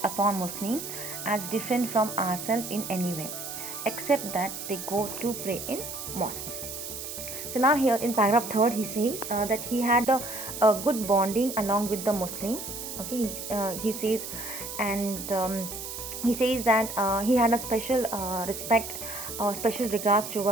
upon Muslims as different from ourselves in any way, except that they go to pray in mosque. So now here in paragraph 3 he says that he had a good bonding along with the Muslim. Okay, he says, and he says that he had a special respect, special regards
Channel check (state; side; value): noise; right; hiss, 8 dB below the sound